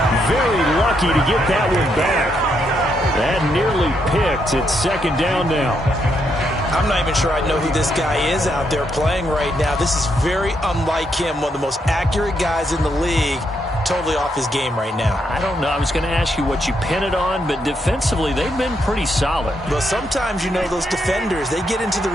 Very lucky to get that one back. That nearly picked. It's second down now. I'm not even sure I know who this guy is out there playing right now. This is very unlike him, one of the most accurate guys in the league. Totally off his game right now. I don't know. I was going to ask you what you pin it on, but defensively, they've been pretty solid. Well, sometimes, you know, those defenders, they get into the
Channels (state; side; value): normal; both; correlation 0.78